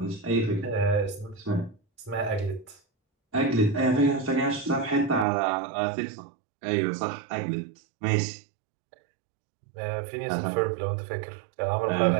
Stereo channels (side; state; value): left; drops out; at 5.2 s